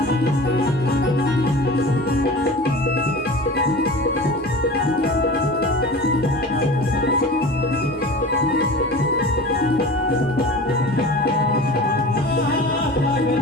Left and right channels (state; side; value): normal; both; correlation 0.36